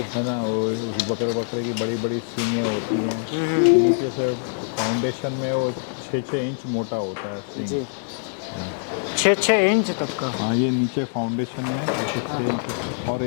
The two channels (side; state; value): right; silent; digital silence